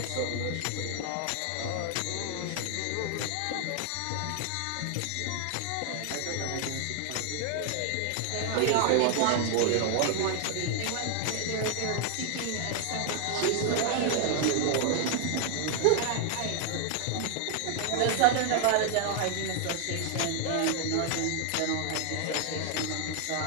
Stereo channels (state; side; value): different; both; correlation 0.00